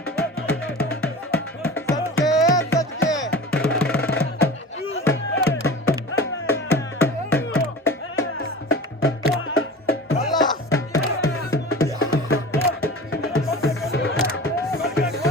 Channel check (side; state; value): both; normal; correlation 0.35